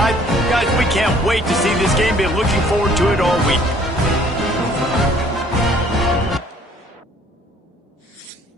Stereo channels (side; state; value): both; normal; correlation 0.58